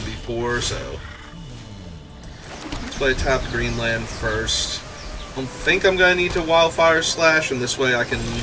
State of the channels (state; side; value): identical; both; correlation 1.00